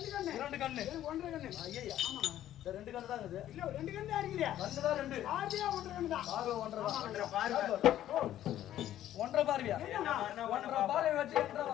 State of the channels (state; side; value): quieter; right; 12.3 dB